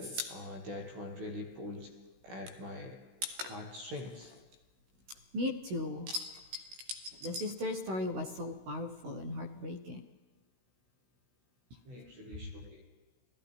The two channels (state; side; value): late; left; 16 ms